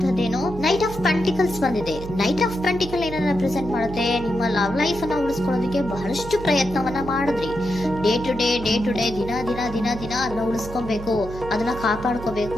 ನೈಟ್ ಆಫ್ ಪೆಂಟಿಕಲ್ಸ್ ಬಂದಿದೆ. ನೈಟ್ ಆಫ್ ಪೆಂಟಿಕಲ್ ಏನನ್ನ ರೆಪ್ರೆಸೆಂಟ್ ಮಾಡುತ್ತೆ? ನಿಮ್ಮ ಲವ್ ಲೈಫ್ ಅನ್ನ ಉಳಿಸ್ಕೊಳ್ಳೋದಕ್ಕೆ ಬಹಳಷ್ಟು ಪ್ರಯತ್ನವನ್ನ ಮಾಡಿದ್ರಿ. ಡೇ ಟು ಡೇ ದಿನ ಅದನ್ನ ಉಳಿಸ್ಕೊಬೇಕು, ಅದನ್ನ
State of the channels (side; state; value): right; noise; hum, 11 dB below the sound